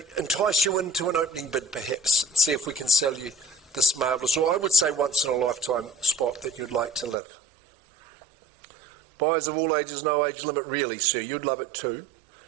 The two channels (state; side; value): drops out; left; at 7.2 s